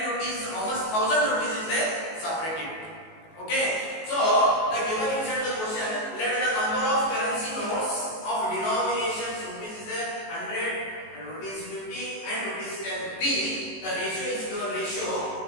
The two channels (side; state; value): right; late; 19 ms